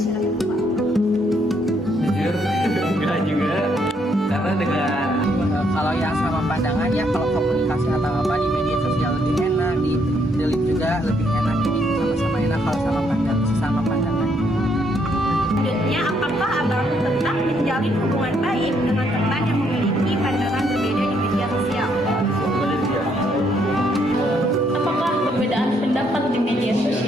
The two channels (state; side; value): normal; both; correlation 0.72